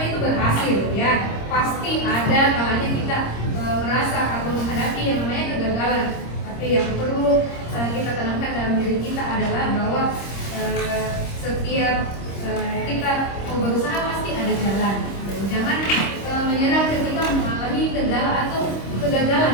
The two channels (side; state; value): right; late; 26 ms